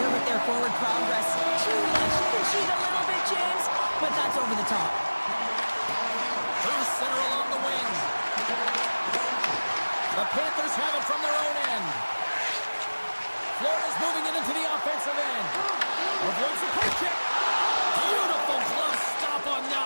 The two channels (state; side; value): inverted; both; correlation -1.00